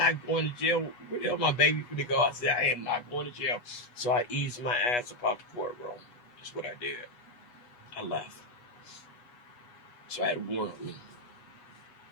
going to jail. Where the hell my baby finna go? I said, I am not going to jail. So I eased my ass up out the courtroom. That's what I did. I left. So I had a warrant on me.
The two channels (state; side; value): late; right; 8.2 ms